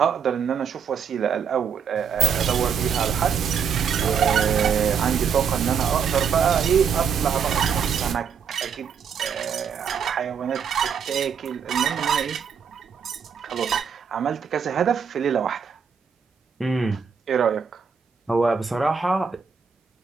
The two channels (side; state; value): left; quieter; 6.9 dB